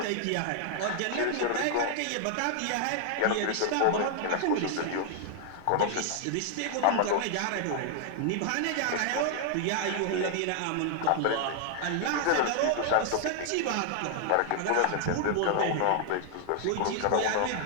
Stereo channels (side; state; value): both; different; correlation 0.00